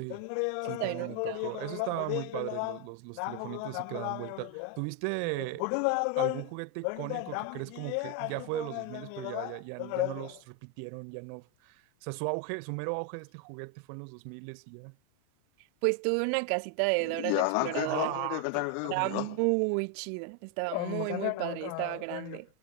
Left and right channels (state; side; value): different; both; correlation 0.01